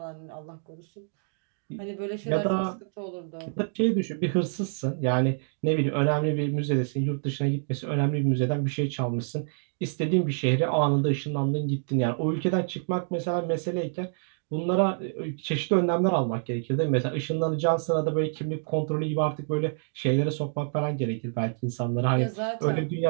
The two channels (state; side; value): silent; left; digital silence